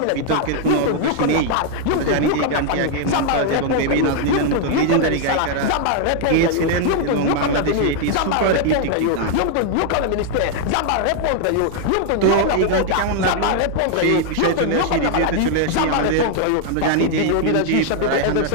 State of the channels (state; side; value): different; both; correlation 0.00